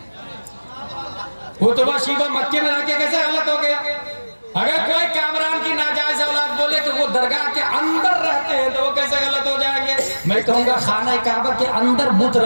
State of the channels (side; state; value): both; inverted; correlation -1.00